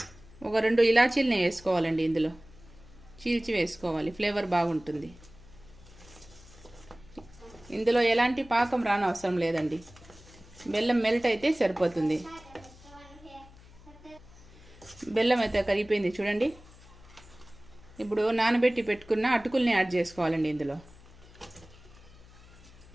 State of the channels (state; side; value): noise; left; hum, 22 dB below the sound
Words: ఒక 2 ఇలాచీలని వేసుకోవాలండి. ఇందులో చీల్చి వేసుకోవాలి, ఫ్లేవర్ బాగుంటుంది. ఇందులో ఎలాంటి పాకం రానవసరం లేదండి. బెల్లం మెల్ట్ అయితే సరిపోతుంది. బెల్లం అయితే కరిగిపోయింది చూడండి. ఇప్పుడు నానబెట్టి పెట్టుకున్న అటుకుల్ని యాడ్ చేసుకోవాలండి ఇందులో.